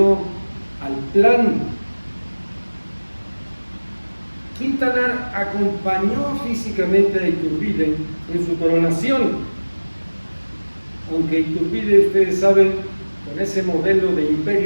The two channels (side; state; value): both; inverted; correlation -1.00